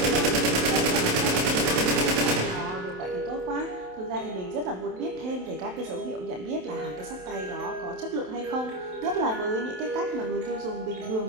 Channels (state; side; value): late; left; 27 ms